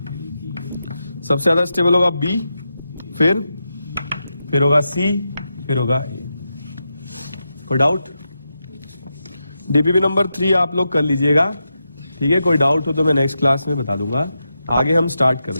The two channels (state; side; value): inverted; both; correlation -0.88